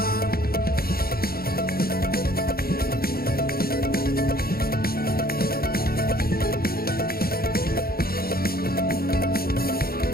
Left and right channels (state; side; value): late; right; 0.44 ms